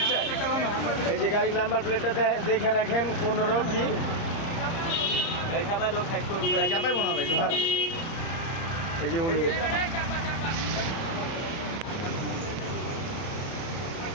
এই যে গাড়ির নাম্বার প্লেটটা দেখে রাখেন, 15 কি এই চাপায় লোক সাইড করুন ভাই, চাপাই মনে ভাই এই যে উনি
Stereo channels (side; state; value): right; late; 30 ms